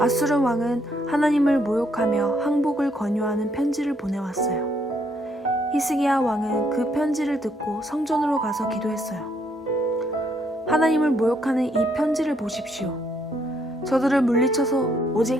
왕은 하나님을 모욕하며 항복을 권유하는 편지를 보내왔어요. 히스기야 왕은 그 편지를 듣고 성전으로 가서 기도했어요. 하나님을 모욕하는 이 편지를 보십시오. 저들을 물리쳐서 오직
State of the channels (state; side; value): normal; both; correlation 0.71